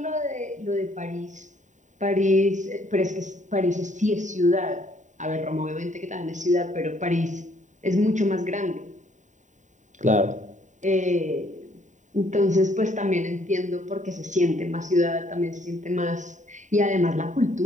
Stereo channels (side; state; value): left; late; 0.36 ms